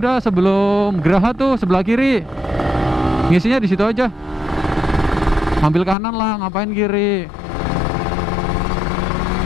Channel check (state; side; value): drops out; right; at 6.0 s